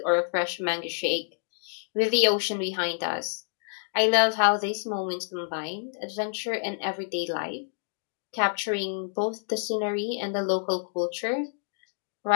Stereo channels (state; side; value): silent; right; digital silence